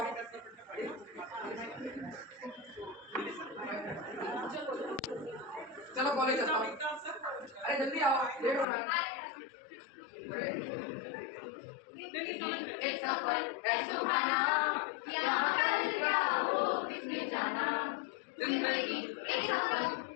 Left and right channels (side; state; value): right; drops out; at 8.7 s